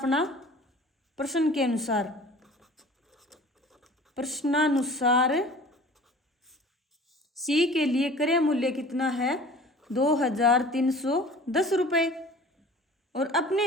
प्रश्न के अनुसार, प्रश्नानुसार सी के लिए क्रय मूल्य कितना है? 2,310 रुपये। और अपने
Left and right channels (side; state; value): both; normal; correlation 0.45